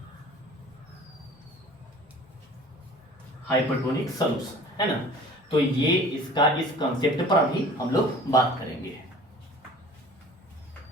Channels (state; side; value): normal; both; correlation 0.45